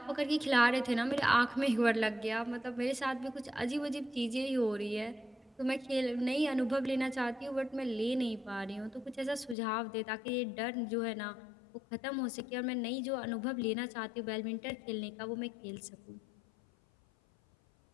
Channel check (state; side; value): drops out; right; at 9.6 s